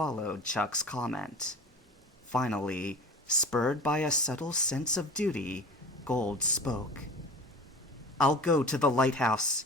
Chuck's comment. Finally, spurred by a subtle sense of duty, Gold spoke. "I'll go to the lighthouse,"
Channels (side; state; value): both; normal; correlation 0.38